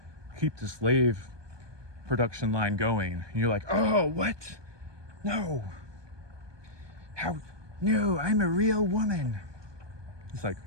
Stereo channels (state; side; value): late; left; 1.2 ms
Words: keep the slave production line going. And you're like, oh, what? No. How? No, I'm a real woman. It's like,